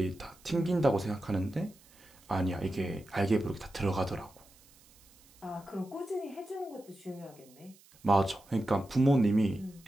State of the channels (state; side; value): noise; right; hiss, 27 dB below the sound